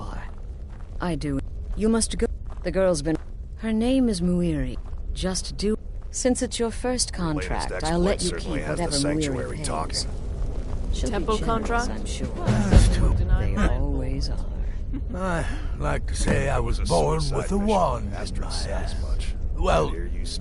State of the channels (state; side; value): identical; both; correlation 1.00